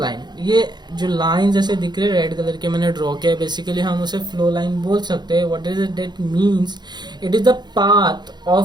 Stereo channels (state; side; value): late; left; 0.21 ms